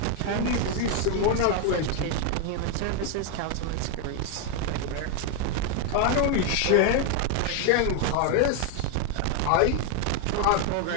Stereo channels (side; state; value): both; different; correlation 0.01